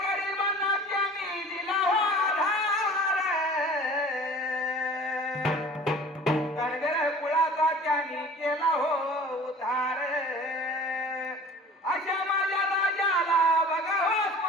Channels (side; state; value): both; normal; correlation 0.44